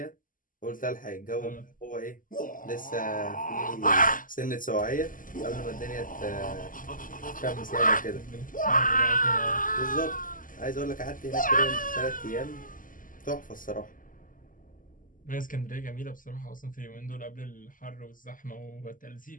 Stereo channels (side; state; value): right; late; 0.39 ms